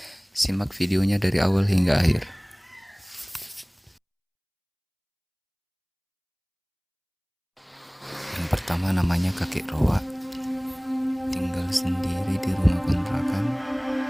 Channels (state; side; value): identical; both; correlation 1.00